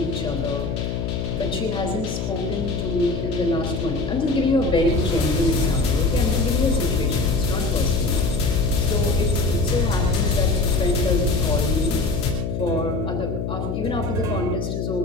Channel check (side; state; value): left; noise; hum, 3 dB below the sound